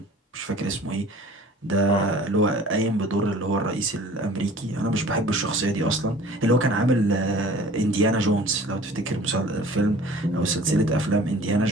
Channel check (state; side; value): normal; both; correlation 0.47